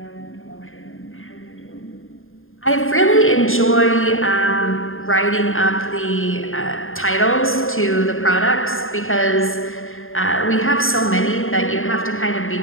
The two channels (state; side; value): late; right; 0.60 ms